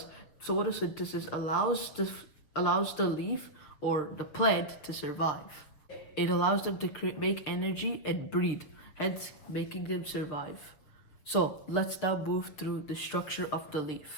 photosynthesis allows the leaf or the plant to survive. It allows them to make energy and breathe, hence making them survive. So let's now move through the structure of the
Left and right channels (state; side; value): late; right; 7.0 ms